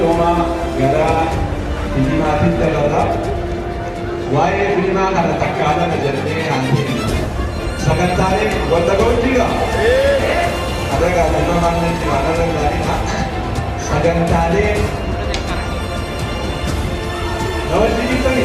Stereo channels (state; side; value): identical; both; correlation 1.00